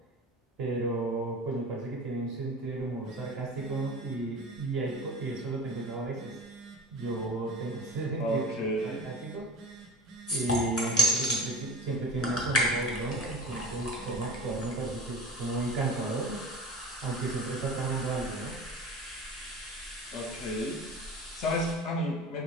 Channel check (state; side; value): normal; both; correlation 0.35